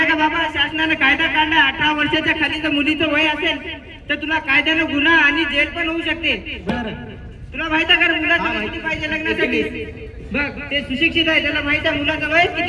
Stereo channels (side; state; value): both; identical; correlation 1.00